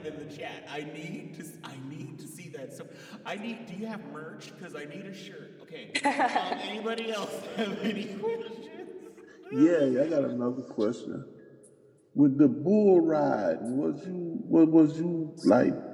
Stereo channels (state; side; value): identical; both; correlation 1.00